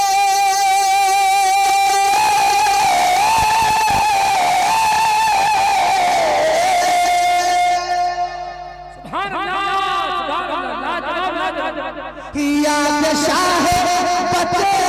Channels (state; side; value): identical; both; correlation 1.00